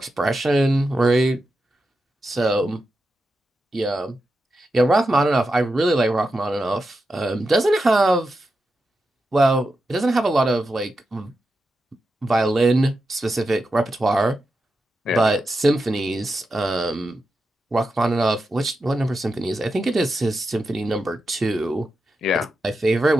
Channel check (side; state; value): both; normal; correlation 0.89